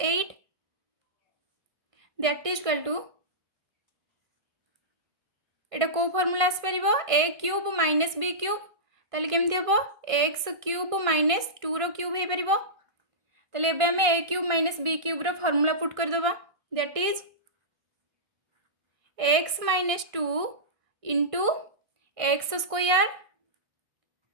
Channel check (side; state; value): left; late; 1.5 ms